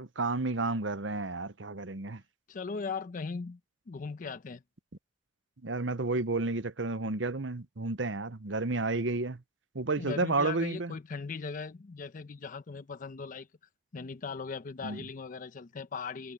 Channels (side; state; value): both; normal; correlation 0.05